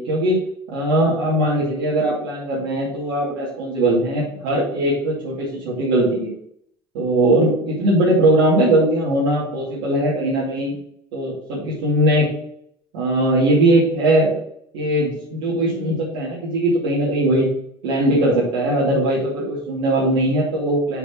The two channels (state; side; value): normal; both; correlation 0.26